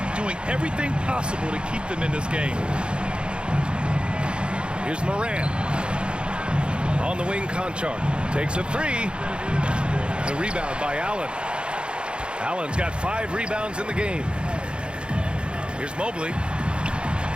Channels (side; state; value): left; late; 0.054 ms